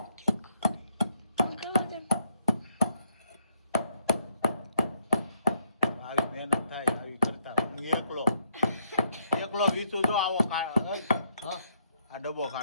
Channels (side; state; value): both; inverted; correlation -0.73